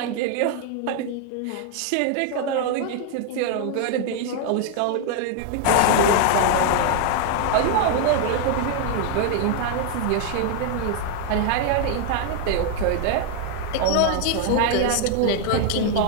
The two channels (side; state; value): both; different; correlation 0.00